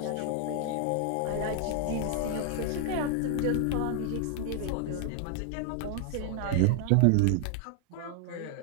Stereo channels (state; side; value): different; both; correlation 0.00